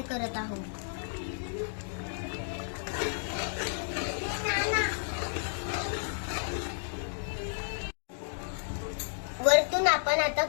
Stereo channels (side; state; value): right; silent; digital silence